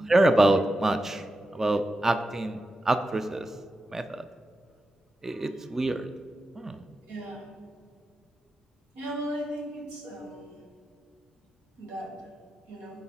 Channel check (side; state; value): both; normal; correlation 0.90